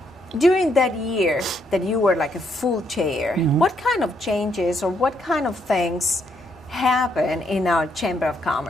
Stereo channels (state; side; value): normal; both; correlation 0.74